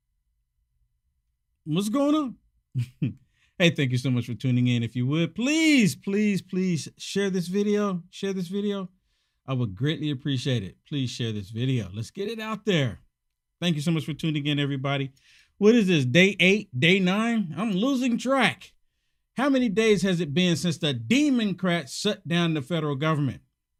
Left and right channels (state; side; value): identical; both; correlation 1.00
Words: What's going on? Hey, thank you so much for tuning in. If you would, please share this video. Share this video. I would greatly appreciate it. Please share this video. Let's get it out there. Thank you so much for tuning in, everybody. What is this, day 8, day 9? I'm losing track. How many days has it been since the Democrats shut down the federal government?